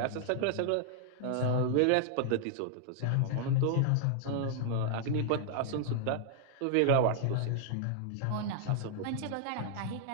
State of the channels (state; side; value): different; both; correlation -0.01